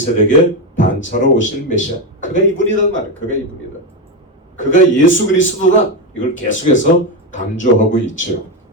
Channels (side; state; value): both; normal; correlation 0.10